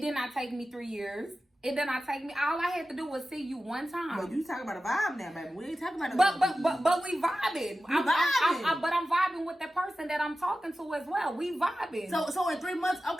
not take me 3 years. It did not take me. All I had to do was see you one time. But you talking about a vibe now, baby. We ain't talking about a But we vibing. But I'm vibing with the person that I'm talking to as well. We vibing. So in 3 months,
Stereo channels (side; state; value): both; normal; correlation 0.94